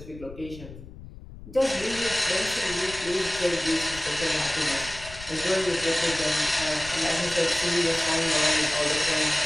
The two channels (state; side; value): noise; left; rumble, 15 dB below the sound